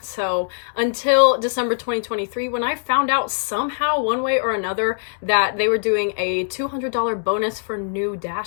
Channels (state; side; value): silent; right; 64 dB below the other